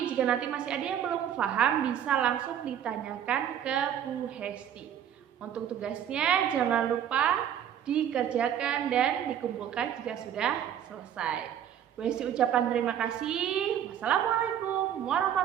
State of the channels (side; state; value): left; quieter; 9.8 dB